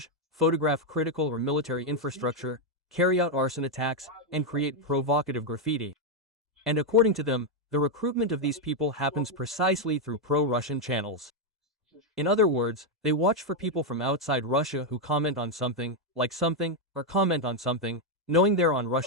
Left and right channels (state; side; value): normal; both; correlation 0.02